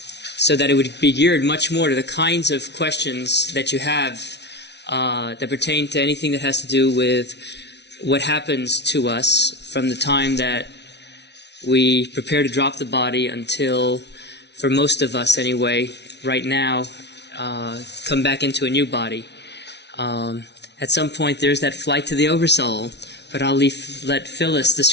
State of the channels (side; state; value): right; late; 0.50 ms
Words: so that it would be geared much more to the kinds of questions that you have that pertain to anything that has to do with what happens to us from the time that we prepare to drop the body until, for most of us anyway, right now, come back into a new body. At some point there's that flight to the Oversoul, but I'll let Phyllis